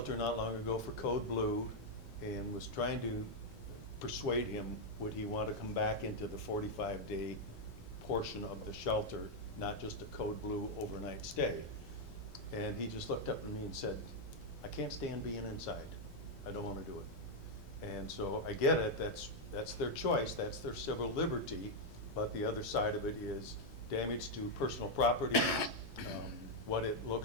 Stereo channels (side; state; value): both; normal; correlation -0.01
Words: not long ago for Code Blue, and was trying to persuade him, would he want to come back into the 45-day portion of the shelter, not just a Code Blue overnight stay. And he just looked up at me and said, I can't stand being inside. I don't want to do it. And so I get it, that's their choice, that's their civil liberty, but the other side of it is damage to personal property, what it